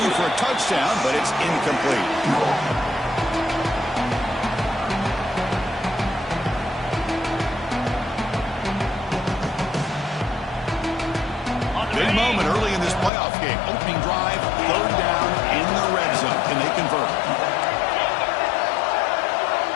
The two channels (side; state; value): right; drops out; at 13.1 s